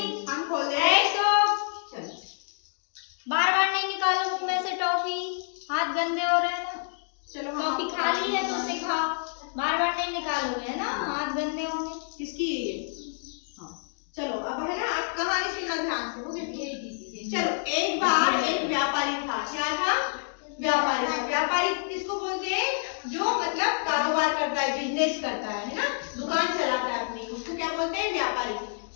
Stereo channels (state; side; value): silent; right; digital silence